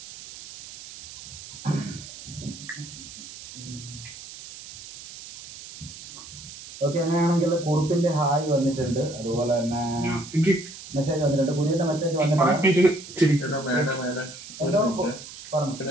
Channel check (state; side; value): noise; right; hiss, 14 dB below the sound